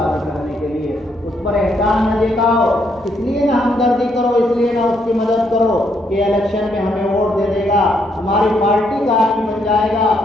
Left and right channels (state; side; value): normal; both; correlation 0.74